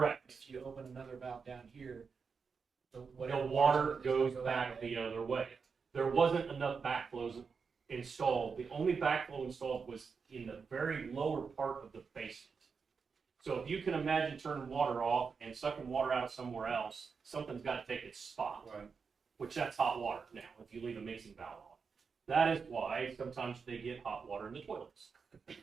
If you open another valve down here, The whatever water is gonna goes go back that way. the other way. There wasn't enough backflows installed. The only backflow installed was in the very lower part of the basement. So if you can imagine turning water off and sucking water out of somewhere else, something's got to take its spot. Right. Which that's hot water now, if you leave a mixing valve on. That is why sometimes they get hot water in the toilets.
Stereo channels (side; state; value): left; quieter; 5.5 dB